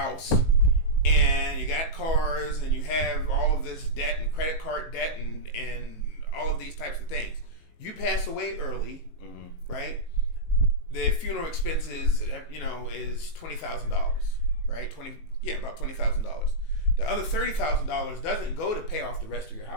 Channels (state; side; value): late; right; 18 ms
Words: and you got cars and you have all of this debt and credit card debt and all of these types of things. You pass away early, right? The funeral expenses, is $20,000, right? About $20,000. The other $30,000 doesn't go to pay off the rest of your